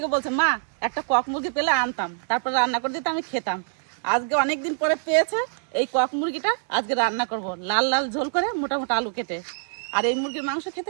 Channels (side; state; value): left; silent; digital silence